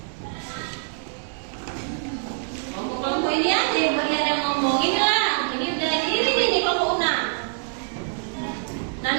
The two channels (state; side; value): silent; left; digital silence